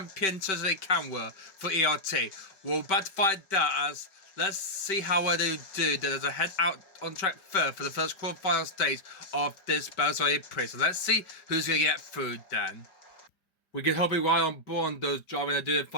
Cersei Camwood for ERT? We're about to find that as... Let's see how well they do as I head out on track third for the first quarterfinal stage of this Bearside E-Prix. So let's see who's going to get through then. We can hope we right on board on those driving to do the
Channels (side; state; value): right; late; 5.2 ms